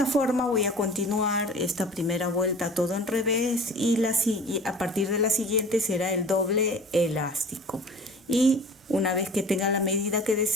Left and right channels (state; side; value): normal; both; correlation 0.42